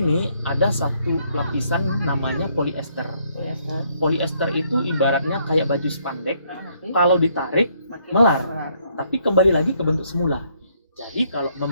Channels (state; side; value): inverted; both; correlation -0.70